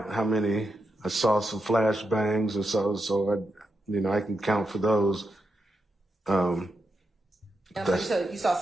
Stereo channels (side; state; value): both; normal; correlation 0.85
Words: how many. I saw some flash bangs and so I can count for those. So you saw